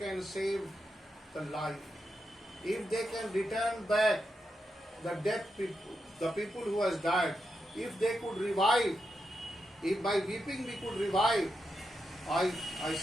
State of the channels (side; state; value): both; normal; correlation 0.85